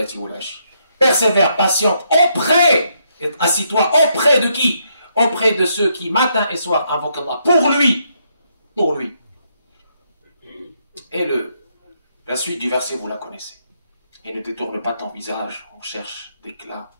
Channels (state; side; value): inverted; both; correlation -0.76